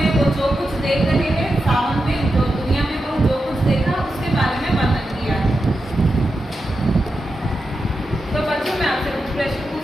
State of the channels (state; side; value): normal; both; correlation 0.89